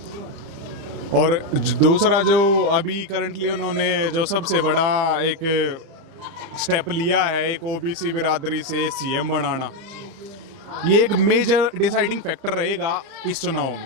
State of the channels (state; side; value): late; left; 30 ms